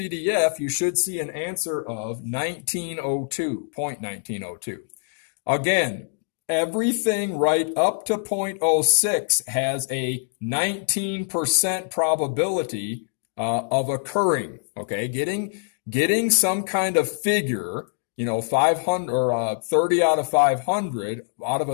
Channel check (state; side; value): silent; right; digital silence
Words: you should see an answer of 1902, 0.1902. Again, everything right up to 0.06 has a 19% probability of occurring. Okay, getting some kind of figure, 500 or 30 out of 500 out of